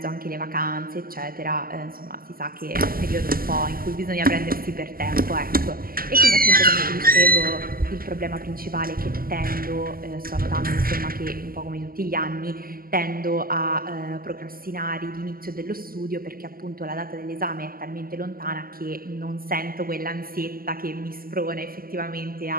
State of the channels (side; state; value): left; late; 0.42 ms